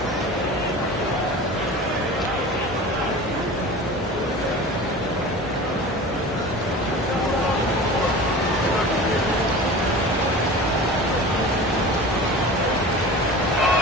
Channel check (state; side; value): normal; both; correlation 0.36